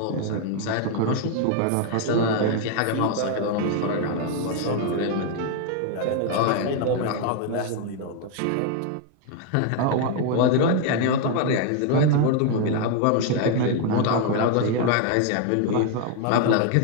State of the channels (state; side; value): different; both; correlation 0.01